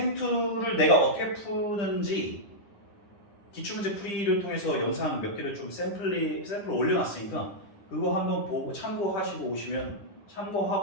내가 어떻게 푸는지 기출문제 풀이를 통해서 영상 몇 개를 좀 샘플을 올려놨으니까 그거 한번 보고 참고하시고 오시면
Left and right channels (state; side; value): late; right; 9.9 ms